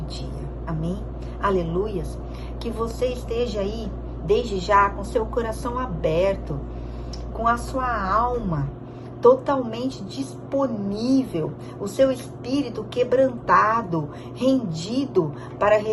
Amém? Aleluias. Que você esteja aí, desde já, com seu coração aberto, com a sua alma totalmente disponível, o seu espírito quebrantado, rendido para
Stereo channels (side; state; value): both; identical; correlation 1.00